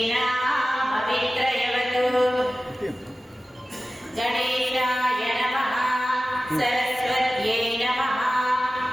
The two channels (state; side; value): normal; both; correlation 0.96